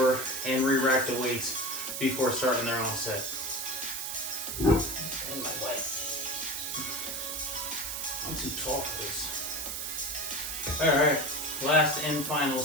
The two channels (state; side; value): noise; right; hiss, 4 dB below the sound